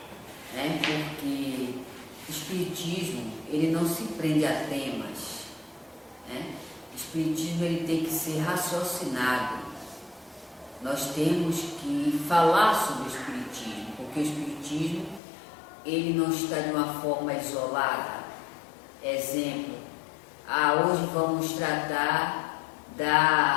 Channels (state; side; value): drops out; right; at 15.2 s